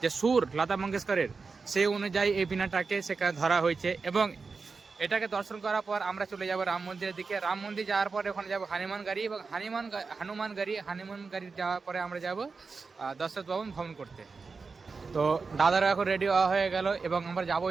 যে সুর লতা মঙ্গেশকরের, সেই অনুযায়ী এই বিনাটাকে সেখানে ধরা হয়েছে। এবং এটাকে দর্শন করার পর আমরা চলে যাব রাম মন্দিরের দিকে। রাম মন্দির যাওয়ার পরে ওখানে যাব হনুমান গাড়ি, এবং হনুমান গাড়ি যাওয়ার পরে আমরা যাব দশরথ ভবন ভ্রমণ করতে। তো দাদারা এখন রেডি হয়ে গেল, এবং আমরা যাবো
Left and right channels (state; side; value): quieter; left; 4.6 dB